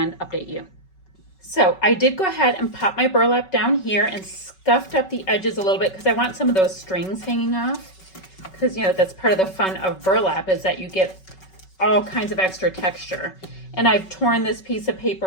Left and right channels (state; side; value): late; right; 5.3 ms